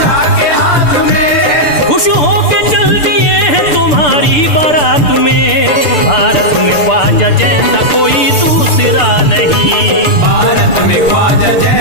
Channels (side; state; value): right; late; 6.8 ms